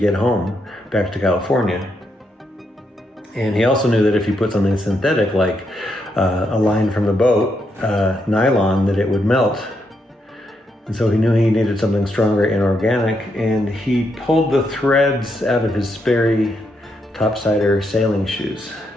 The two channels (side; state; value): both; normal; correlation 0.80